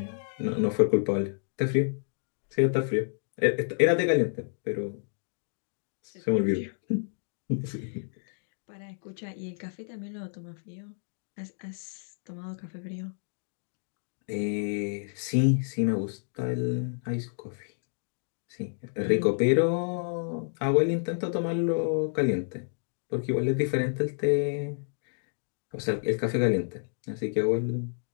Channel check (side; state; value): right; silent; digital silence